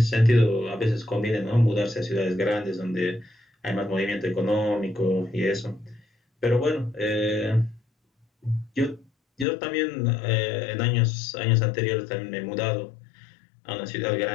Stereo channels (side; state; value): right; drops out; at 9.5 s